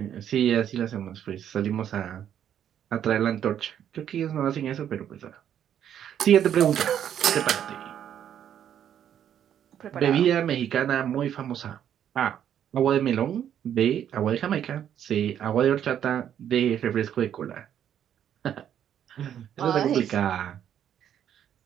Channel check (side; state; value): left; quieter; 9.7 dB